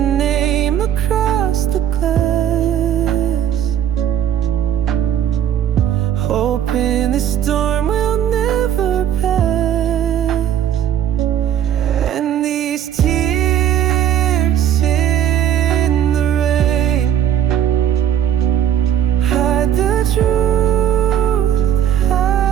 name across the glass, hoping this storm will never pass. And these tears in the rain hide the truth,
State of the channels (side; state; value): left; quieter; 10.1 dB